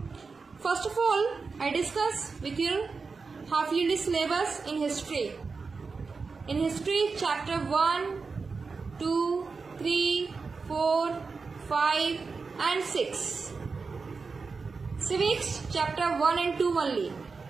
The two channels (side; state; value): left; quieter; 4.6 dB